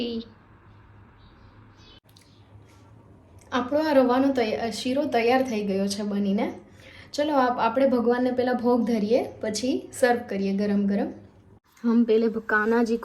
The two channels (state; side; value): identical; both; correlation 1.00